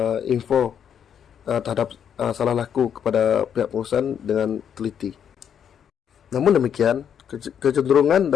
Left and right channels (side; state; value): right; quieter; 8.4 dB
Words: info terhadap salah laku kepada pihak pengurusan dengan teliti. Namun demikian, kecenderungan